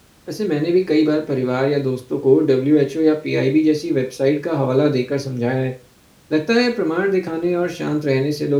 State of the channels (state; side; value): identical; both; correlation 1.00